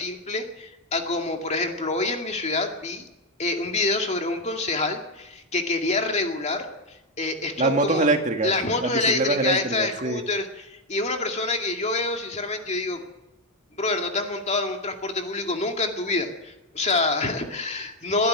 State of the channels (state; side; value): normal; both; correlation 0.05